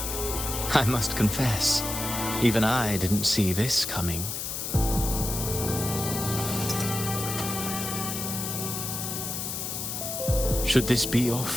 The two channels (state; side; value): noise; left; hiss, 4 dB below the sound